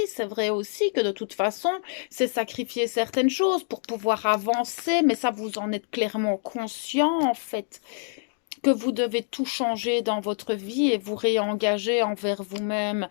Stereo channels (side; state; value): right; silent; digital silence